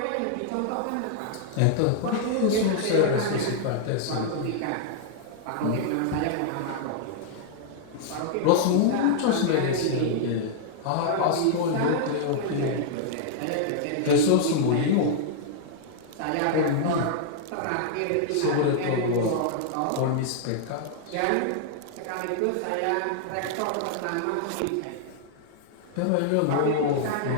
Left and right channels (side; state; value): both; different; correlation -0.01